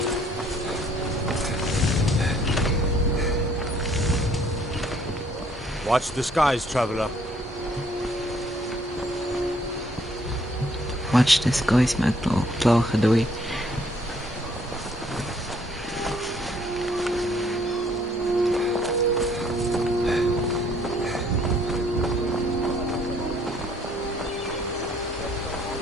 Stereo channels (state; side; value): normal; both; correlation 0.63